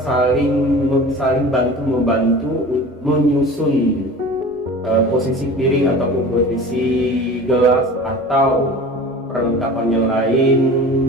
saling bantu membantu menyusun posisi piring ataupun posisi gelas atau perlengkapan yang lain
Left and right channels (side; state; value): both; normal; correlation 0.38